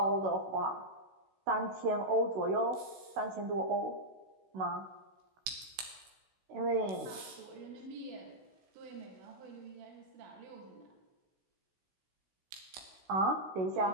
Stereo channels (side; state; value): left; late; 16 ms